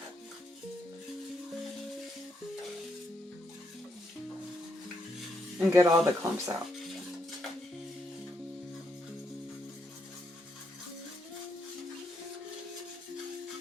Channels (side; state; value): both; normal; correlation 0.77